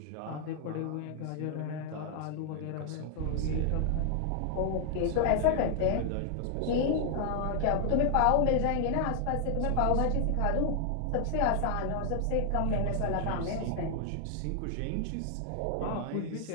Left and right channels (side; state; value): both; different; correlation 0.00